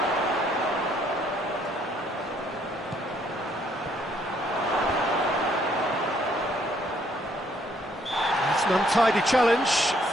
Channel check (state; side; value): normal; both; correlation 0.67